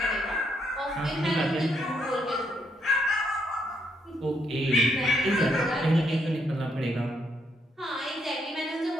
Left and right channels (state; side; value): normal; both; correlation 0.74